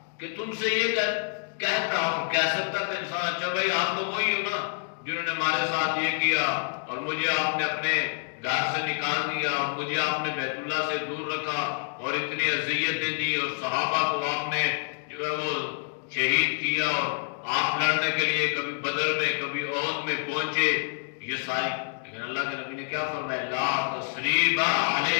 کہ تم سے یہ کہتا ہوں۔ کہہ سکتا تھا انسان اچھا بھائی آپ تو وہی ہو نا جنہوں نے ہمارے ساتھ یہ کیا اور مجھے آپ نے اپنے گھر سے نکال دیا اور مجھے آپ نے بیت اللہ سے دور رکھا اور اتنی اذیتیں دی اور صحابہ کو آپ نے جو ہے وہ شہید کیا اور آپ لڑنے کے لیے کبھی بدر میں کبھی احد میں پہنچے، یہ ساری، لیکن اللہ کے نبی نے کیا فرمایا؟ لا تثریب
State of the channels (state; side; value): silent; right; digital silence